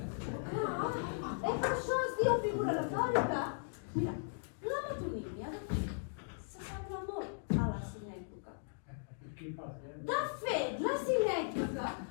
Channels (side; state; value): right; silent; digital silence